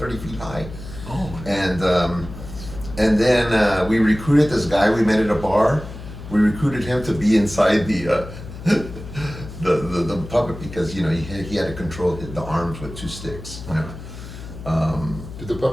feet high. Oh. And then we recruited this guy we met at a bar. We recruited him to be inside the puppet because he had to control the arms with 2 sticks. Did the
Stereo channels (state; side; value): noise; left; hum, 12 dB below the sound